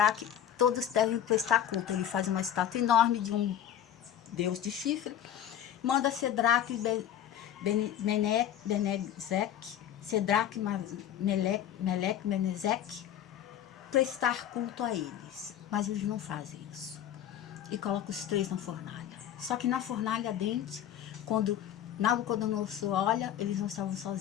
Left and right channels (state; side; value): quieter; right; 10.5 dB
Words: todos devem prestar culto. Ele faz uma estátua enorme de um Deus de chifre, manda Cedraque, Cedraque, Meleque, Menezeque prestar culto a eles, mas eles não fazem isso. e coloca os 3 na fornalha. Só que na fornalha ardente, quando Nabucodonosor olha, eles não estavam